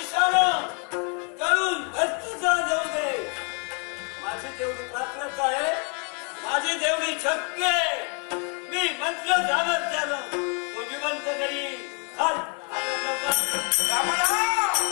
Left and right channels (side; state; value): right; quieter; 36.9 dB